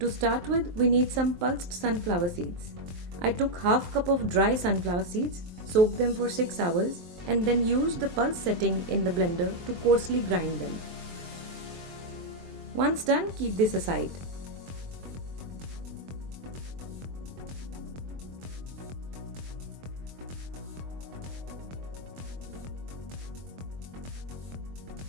start with, we need some pulsed sunflower seeds. I took half cup of dry sunflower seeds, soaked them for 6 hours, and then used the pulse setting in the blender to coarsely grind them. Once done, keep this aside.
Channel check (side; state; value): left; late; 23 ms